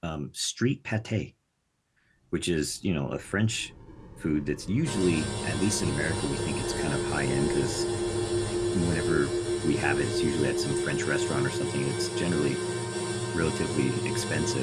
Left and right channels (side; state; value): both; identical; correlation 1.00